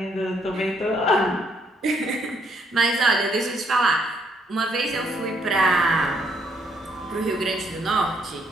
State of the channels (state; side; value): normal; both; correlation 0.71